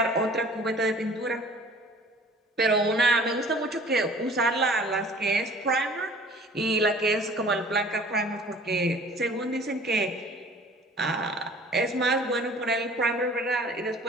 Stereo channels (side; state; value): both; normal; correlation 0.49